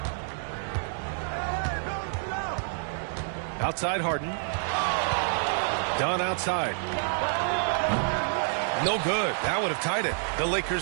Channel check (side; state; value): left; silent; digital silence